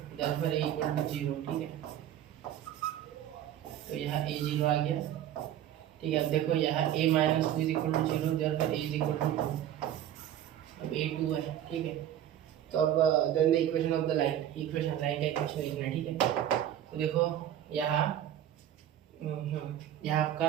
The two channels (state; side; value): quieter; left; 11.2 dB